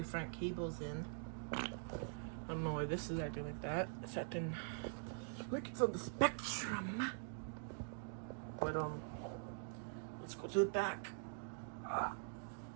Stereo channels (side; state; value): left; silent; digital silence